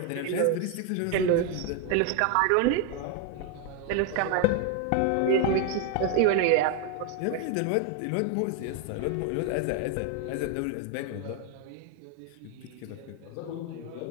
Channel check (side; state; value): both; different; correlation 0.01